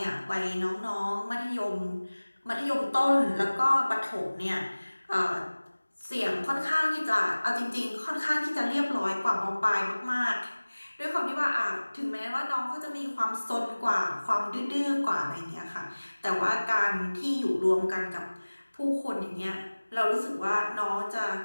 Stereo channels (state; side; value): inverted; both; correlation -1.00